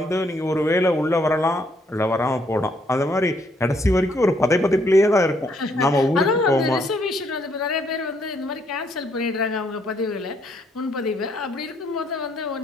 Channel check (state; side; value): normal; both; correlation 0.71